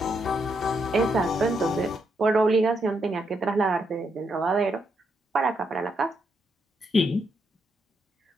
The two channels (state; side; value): normal; both; correlation 0.79